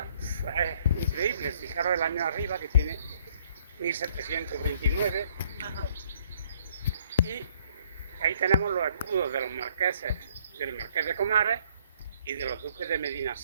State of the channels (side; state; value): both; inverted; correlation -0.64